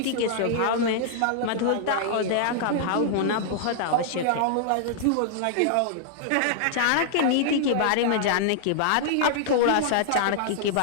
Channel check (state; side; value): different; both; correlation -0.01